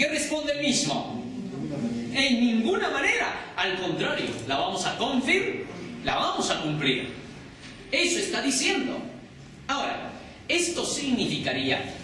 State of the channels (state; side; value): identical; both; correlation 1.00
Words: responde el mismo? En ninguna manera, al contrario, la vamos a la vamos a cumplir. Eso está diciendo. Ahora, esto significaría